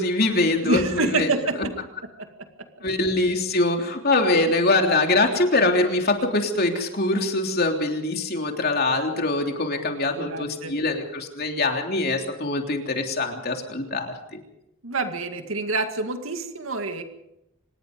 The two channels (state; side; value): normal; both; correlation 0.04